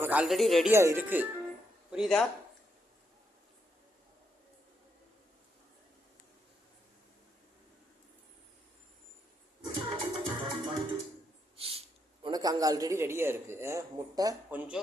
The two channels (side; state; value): both; normal; correlation 0.78